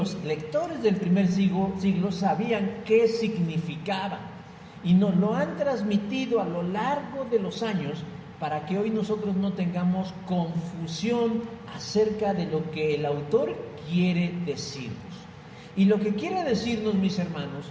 lectores del primer siglo sabían qué significaban, y nos lo han transmitido a lo largo de los años para que hoy nosotros no tengamos confusión acerca de lo que el autor quiere decirnos. Y lo que quiere decirnos, mis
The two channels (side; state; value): both; identical; correlation 1.00